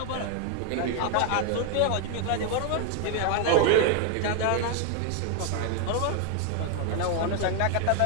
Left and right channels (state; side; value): different; both; correlation 0.00